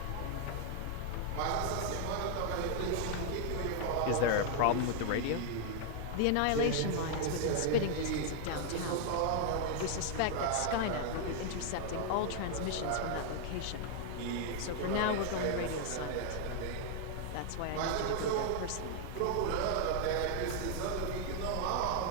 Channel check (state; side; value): different; both; correlation 0.00